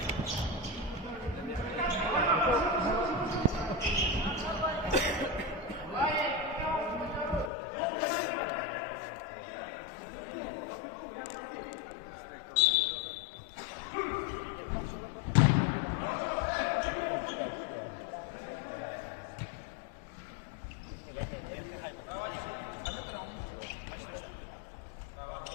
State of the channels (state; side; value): drops out; right; at 7.5 s